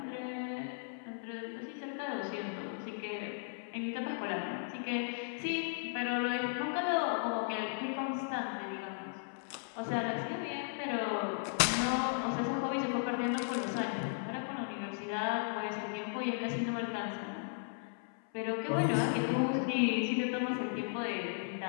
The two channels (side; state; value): right; silent; 54 dB below the other